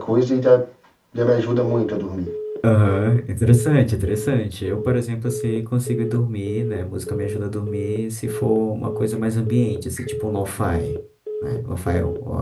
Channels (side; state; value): both; identical; correlation 1.00